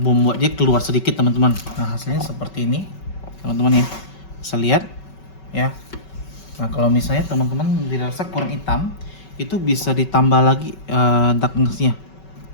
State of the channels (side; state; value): right; late; 5.3 ms